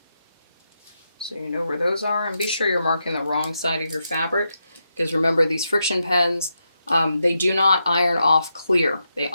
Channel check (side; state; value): both; inverted; correlation -0.85